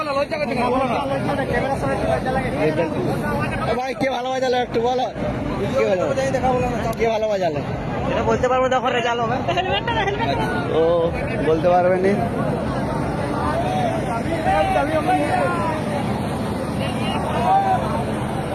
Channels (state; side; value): identical; both; correlation 1.00